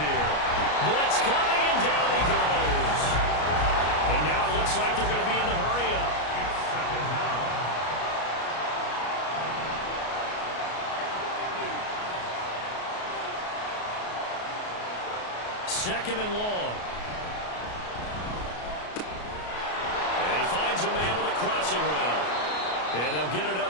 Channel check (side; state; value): right; late; 33 ms